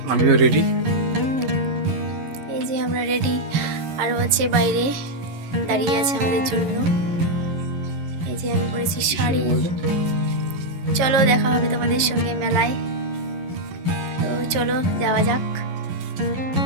আমিও রেডি। এই যে আমরা রেডি, আরও আছে বাইরে দাঁড়িয়ে আছে আমাদের জন্য। এই যে আমি পরেছি শাড়ি। চলো দেখা হবে তোমাদের সঙ্গে মেলায়। তো চলো যাওয়া যাক।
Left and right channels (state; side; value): late; left; 11 ms